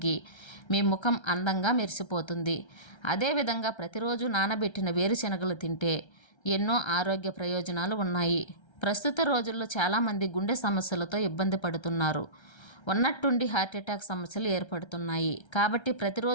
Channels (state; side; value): late; right; 1.3 ms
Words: మీ ముఖం అందంగా మెరిసిపోతుంది. అదేవిధంగా ప్రతిరోజు నానబెట్టిన వేరుశెనగలు తింటే ఎన్నో ఆరోగ్య ప్రయోజనాలు ఉన్నాయి. ప్రస్తుత రోజుల్లో చాలామంది గుండె సమస్యలతో ఇబ్బంది పడుతున్నారు. ఉన్నట్టుండి హార్ట్అటాక్ సమస్యలు ఏర్పడుతున్నాయి. కాబట్టి